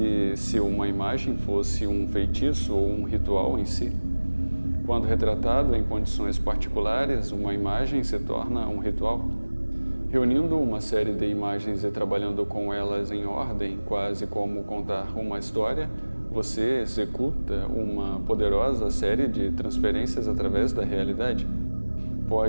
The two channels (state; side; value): inverted; both; correlation -1.00